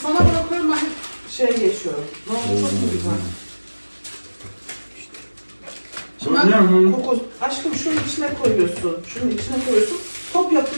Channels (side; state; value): both; inverted; correlation -1.00